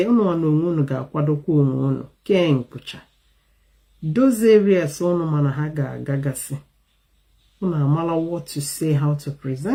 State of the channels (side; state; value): both; identical; correlation 1.00